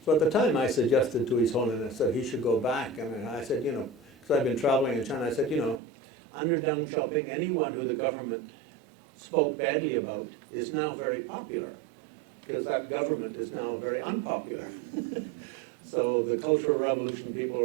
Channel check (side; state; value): left; drops out; at 5.8 s